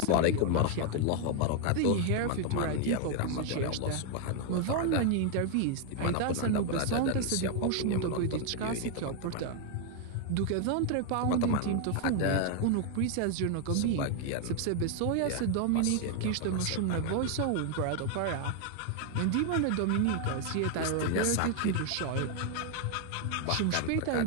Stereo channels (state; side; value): different; both; correlation 0.00